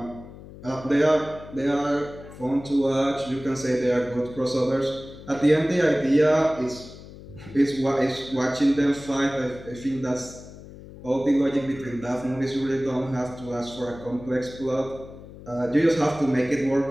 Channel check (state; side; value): noise; left; hum, 16 dB below the sound